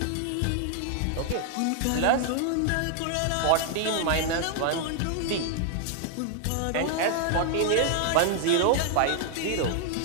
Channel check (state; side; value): different; both; correlation 0.00